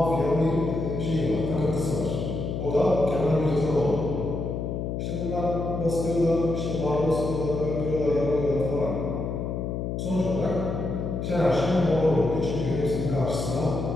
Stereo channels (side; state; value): left; noise; hum, 3 dB below the sound